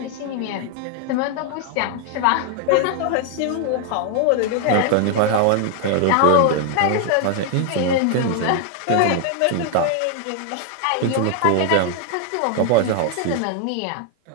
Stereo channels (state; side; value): different; both; correlation 0.00